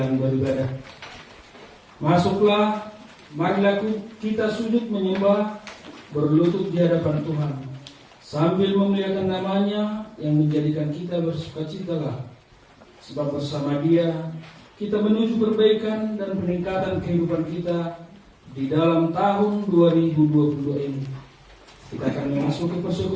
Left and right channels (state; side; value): identical; both; correlation 1.00